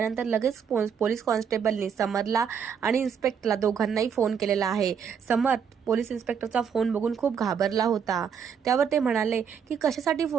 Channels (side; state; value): left; quieter; 7.2 dB